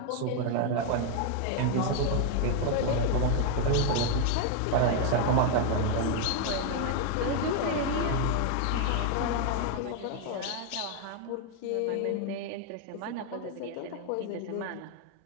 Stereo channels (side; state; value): both; different; correlation 0.01